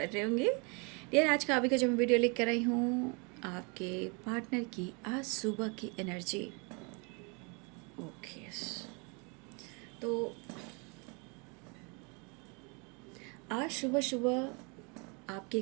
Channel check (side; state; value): left; quieter; 32.4 dB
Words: रहे होंगे। यार आज का अभी का जो मैं वीडियो लेकर आई हूँ, आपके पार्टनर की आज सुबह की एनर्जी। ओके, तो आज सुबह सुबह आपके